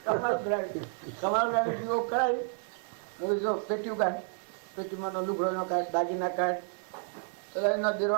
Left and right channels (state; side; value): silent; left; 57 dB below the other